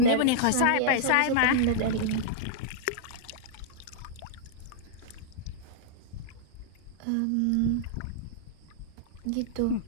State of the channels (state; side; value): different; both; correlation -0.02